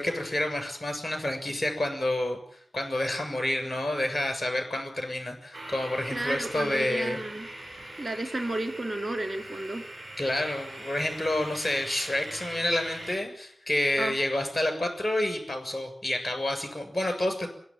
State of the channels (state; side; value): normal; both; correlation 0.94